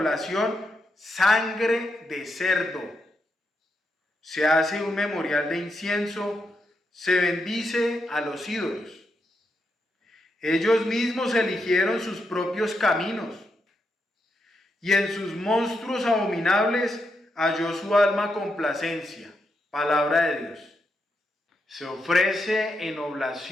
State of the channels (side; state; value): both; normal; correlation 0.83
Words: sangre de cerdo, se hace un memorial de incienso, se bendice a los ídolos. Ellos mismos eligieron sus propios caminos, y en sus monstruos abominables halló su alma complacencia. Palabra de Dios. Se ofrece en